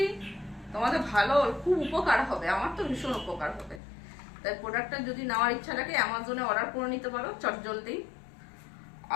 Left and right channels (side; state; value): right; drops out; at 3.8 s